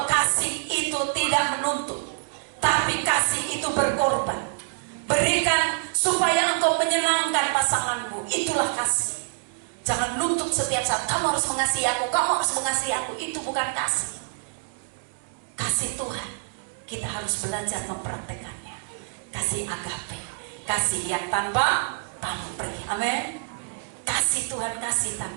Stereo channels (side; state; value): left; silent; digital silence